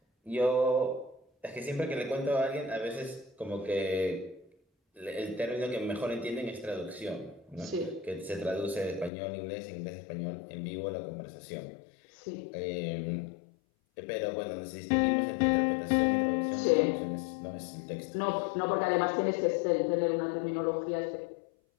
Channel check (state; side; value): drops out; right; at 9.1 s